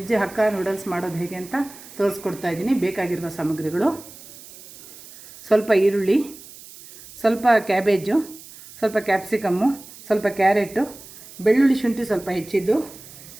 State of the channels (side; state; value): right; noise; hiss, 18 dB below the sound